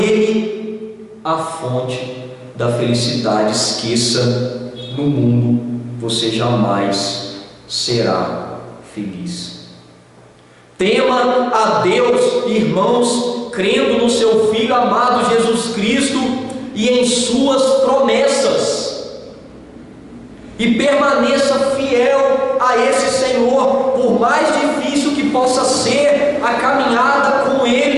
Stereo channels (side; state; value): both; identical; correlation 1.00